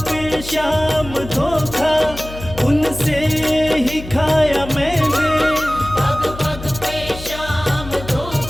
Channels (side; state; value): left; noise; hum, 13 dB below the sound